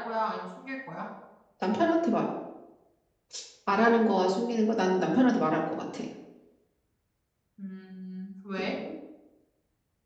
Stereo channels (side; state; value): both; identical; correlation 1.00